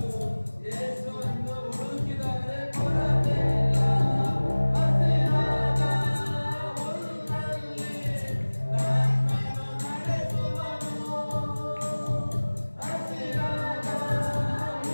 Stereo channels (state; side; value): inverted; both; correlation -1.00